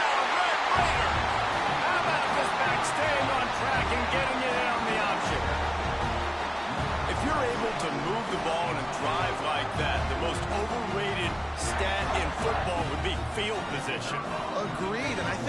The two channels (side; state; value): both; identical; correlation 1.00